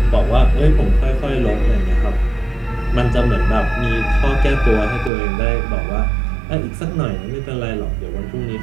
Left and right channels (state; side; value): drops out; left; at 5.1 s